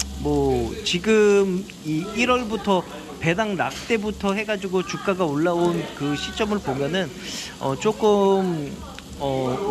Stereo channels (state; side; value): identical; both; correlation 1.00